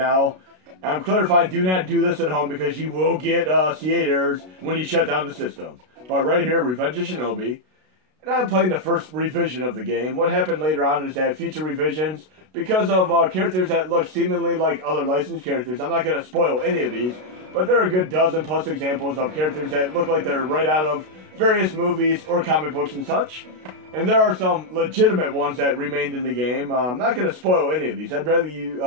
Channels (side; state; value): left; late; 32 ms